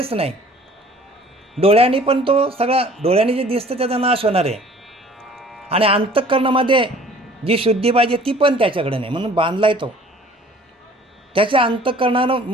नाही. डोळ्यांनी पण तो सगळा, डोळ्यांनी जे दिसतं त्याचा नाश होणार आहे. आणि अंतःकरणामध्ये जी शुद्धी पाहिजे ती पण त्याच्याकडे नाही, म्हणून बांधलाय तो. त्याच्या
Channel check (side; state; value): both; normal; correlation 0.51